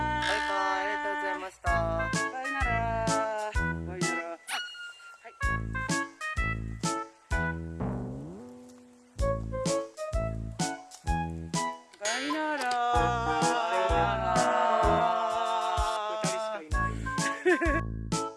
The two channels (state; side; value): identical; both; correlation 1.00